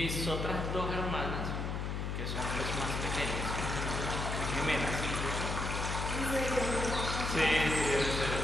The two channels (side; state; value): left; noise; hum, 2 dB below the sound